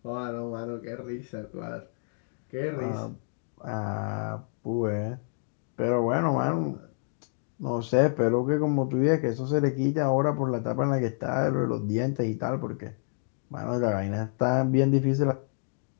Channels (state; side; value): silent; right; digital silence